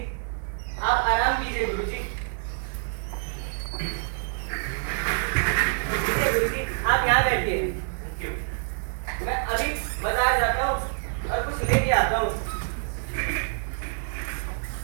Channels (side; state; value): left; silent; 58 dB below the other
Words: आप आराम कीजिए गुरुजी। गुरुजी आप यहाँ बैठिए, मैं अभी बाजार जाता हूँ और कुछ लेके आता हूँ।